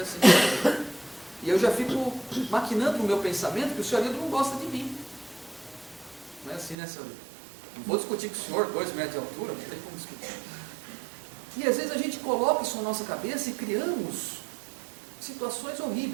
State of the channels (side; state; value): left; drops out; at 6.8 s